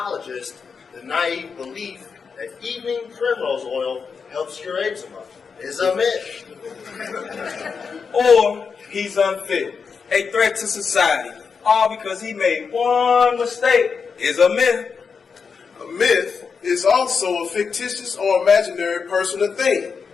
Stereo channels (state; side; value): quieter; right; 5.6 dB